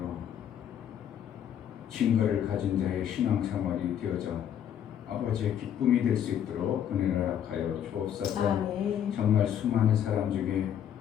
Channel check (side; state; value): right; quieter; 9.7 dB